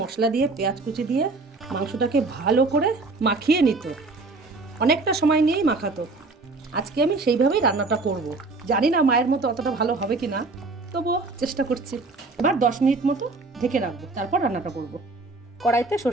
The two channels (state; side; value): quieter; left; 3.6 dB